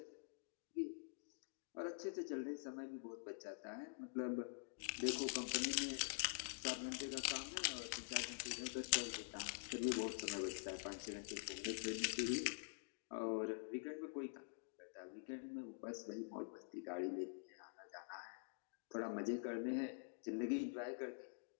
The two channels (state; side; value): silent; right; digital silence